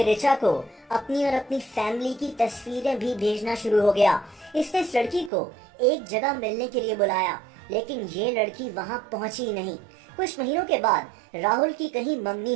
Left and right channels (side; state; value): left; drops out; at 5.3 s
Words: रिचा को अपनी और अपनी फैमिली की तस्वीरें भी भेजना शुरू हो गया। इसने इस लड़की को एक जगह मिलने के लिए बुलाया, लेकिन ये लड़की वहां पहुंची नहीं। कुछ महीनों के बाद राहुल की कहीं मंगनी